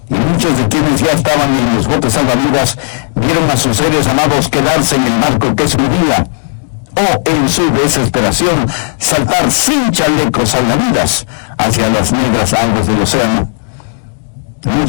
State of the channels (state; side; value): silent; right; digital silence